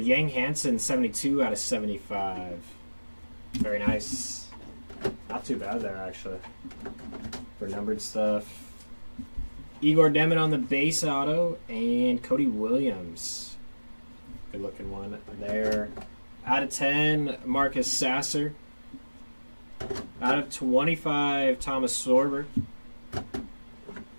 Yang Hansen 72 out of 75. Very nice. Not too bad there actually for numbered stuff. Igor Demin on the base auto and Cody Williams. Good looking one there. Out of 10, Marcus Sasser. Out of 25, Thomas Sorber.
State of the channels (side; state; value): both; inverted; correlation -1.00